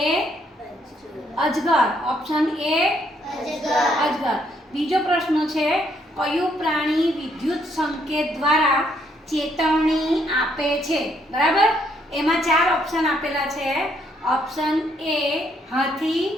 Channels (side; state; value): both; normal; correlation 0.71